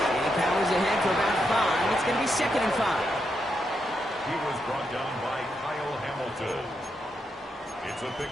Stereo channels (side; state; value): both; normal; correlation 0.82